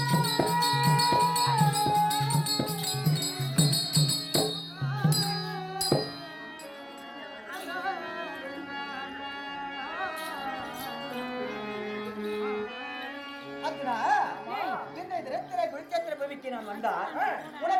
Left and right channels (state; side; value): identical; both; correlation 1.00